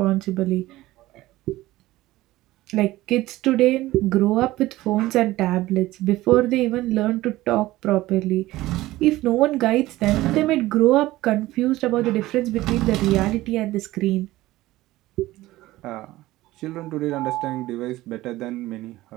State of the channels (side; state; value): left; quieter; 17.2 dB